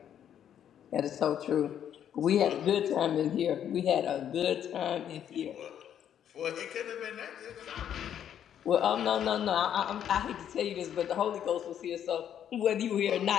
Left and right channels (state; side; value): quieter; right; 9.7 dB